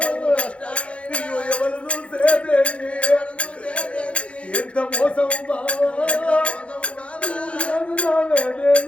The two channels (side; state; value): right; late; 0.061 ms